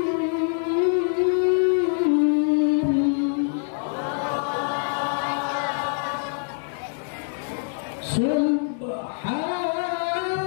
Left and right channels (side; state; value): right; silent; digital silence